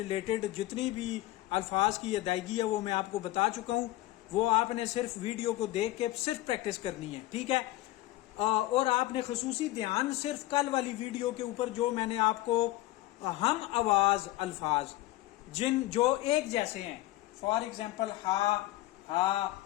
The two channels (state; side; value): quieter; right; 16.8 dB